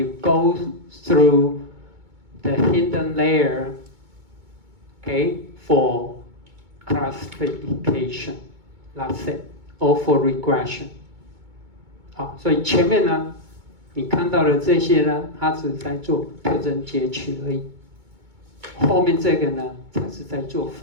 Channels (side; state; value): left; late; 2.2 ms